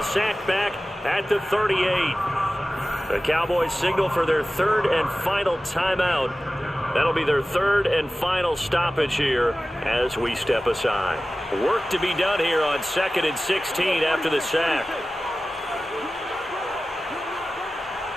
Sacked back at the 38. The Cowboys signal for their third and final timeout. That'll be their third and final stoppage here as we step aside. Work to be done here on 2nd and 16 after the sack.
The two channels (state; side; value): normal; both; correlation 0.96